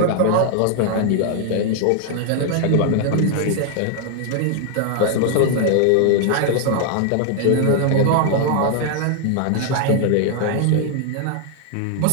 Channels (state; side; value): different; both; correlation 0.00